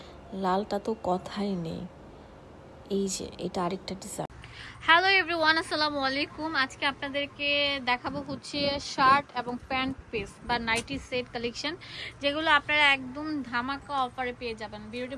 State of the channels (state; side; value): identical; both; correlation 1.00